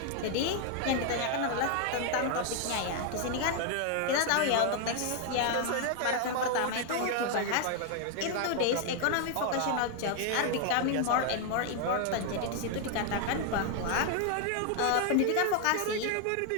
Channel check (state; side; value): different; both; correlation 0.00